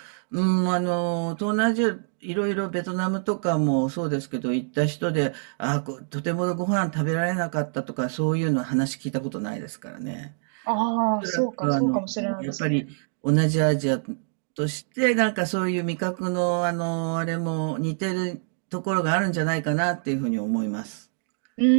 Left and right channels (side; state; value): left; silent; digital silence